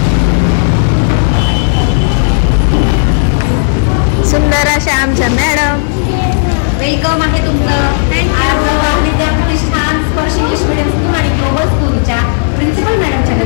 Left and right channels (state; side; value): silent; right; digital silence